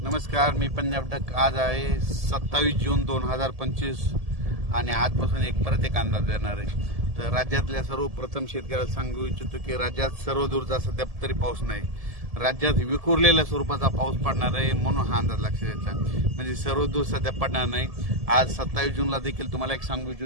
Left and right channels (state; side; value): late; left; 1.7 ms